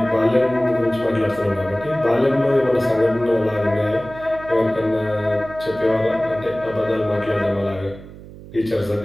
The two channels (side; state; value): right; noise; hum, 17 dB below the sound